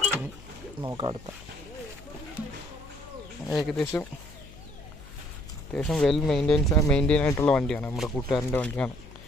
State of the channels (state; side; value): noise; left; hum, 19 dB below the sound